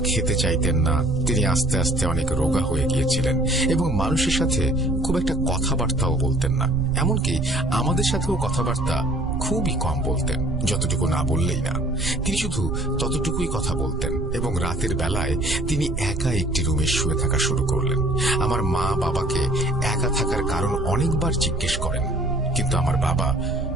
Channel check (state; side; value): noise; right; rumble, 5 dB below the sound